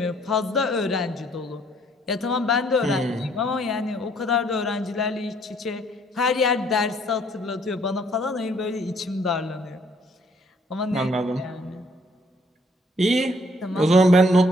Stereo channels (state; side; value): normal; both; correlation 0.64